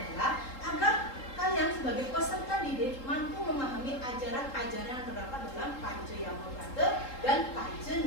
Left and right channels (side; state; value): right; late; 3.8 ms